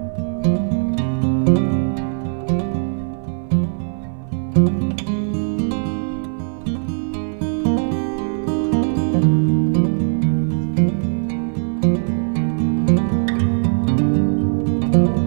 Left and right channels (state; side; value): silent; left; 60 dB below the other